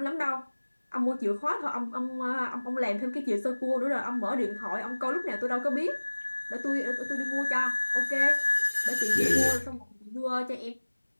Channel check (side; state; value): both; inverted; correlation -1.00